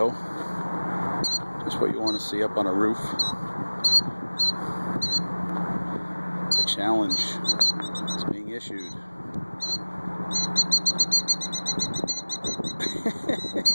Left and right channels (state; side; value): inverted; both; correlation -1.00